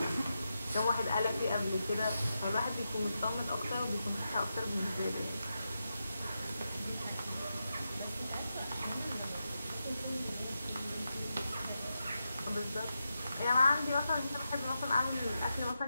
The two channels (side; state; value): both; inverted; correlation -0.88